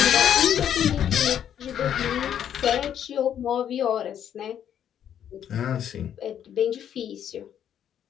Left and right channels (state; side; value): quieter; right; 9.6 dB